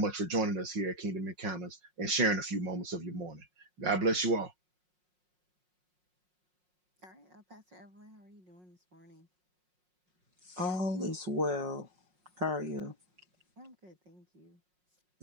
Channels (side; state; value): left; late; 5.5 ms